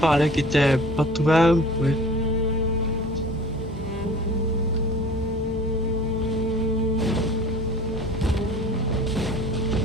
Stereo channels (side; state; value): both; normal; correlation 0.44